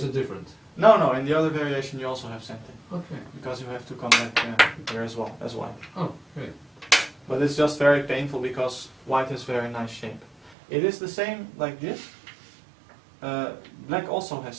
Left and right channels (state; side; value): drops out; left; at 10.6 s